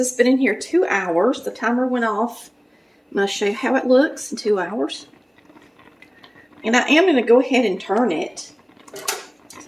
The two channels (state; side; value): identical; both; correlation 1.00